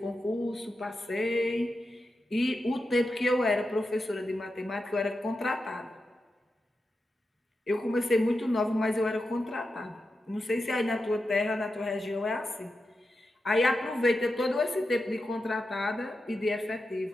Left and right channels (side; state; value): both; normal; correlation 0.89